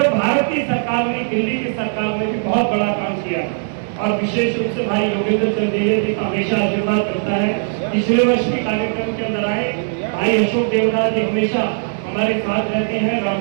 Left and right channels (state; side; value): silent; left; 67 dB below the other